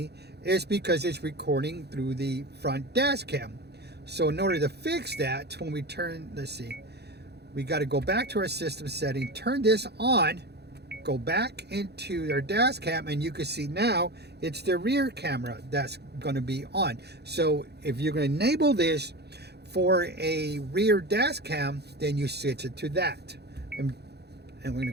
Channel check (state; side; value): late; left; 0.48 ms